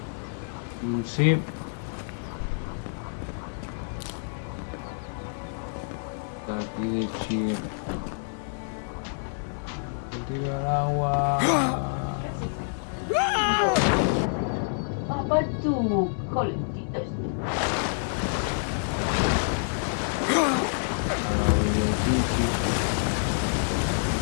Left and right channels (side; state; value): right; silent; digital silence